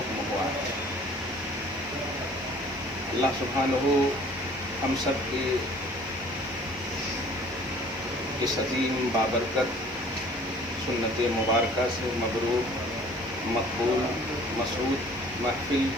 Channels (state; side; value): noise; left; hiss, 29 dB below the sound